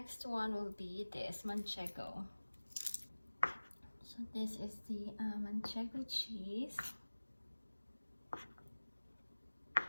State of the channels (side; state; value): both; inverted; correlation -1.00